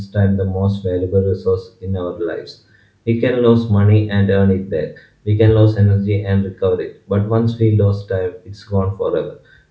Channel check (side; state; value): both; identical; correlation 1.00